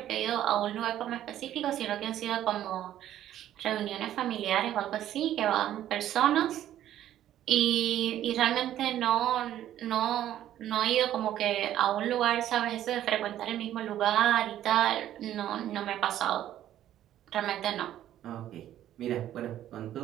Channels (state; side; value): quieter; left; 12.1 dB